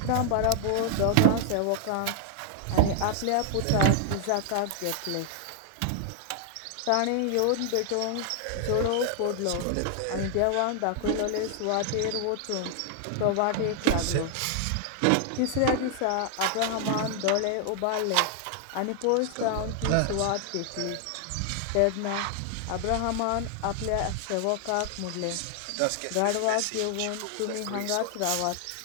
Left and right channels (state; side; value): different; both; correlation 0.00